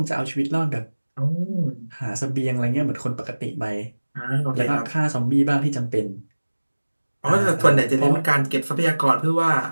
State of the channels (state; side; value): inverted; both; correlation -1.00